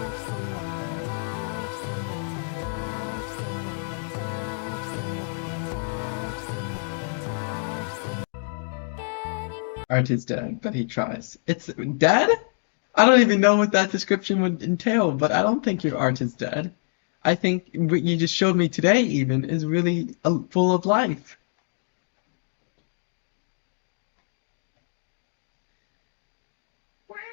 someone else. Touch, touch. Art is dead, but he tries. It's dead? I don't even know what that description would entail, but I don't think your art is dead. I think what you just showed me today even is really full of life.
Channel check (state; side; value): silent; right; digital silence